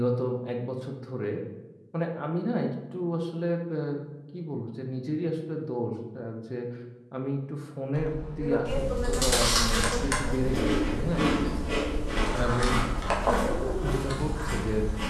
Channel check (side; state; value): both; identical; correlation 1.00